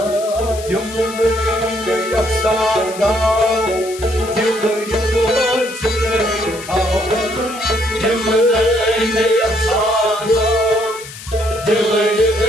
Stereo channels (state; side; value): noise; left; hiss, 14 dB below the sound